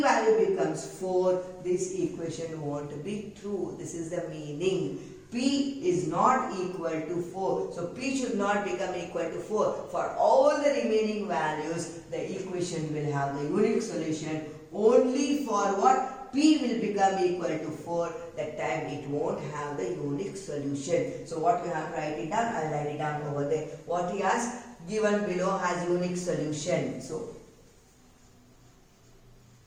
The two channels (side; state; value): both; identical; correlation 1.00